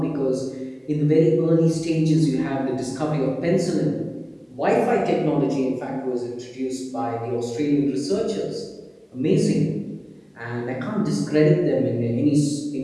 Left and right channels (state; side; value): identical; both; correlation 1.00